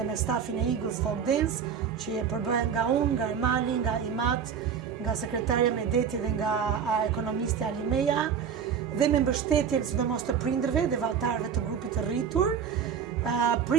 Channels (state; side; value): quieter; left; 7.3 dB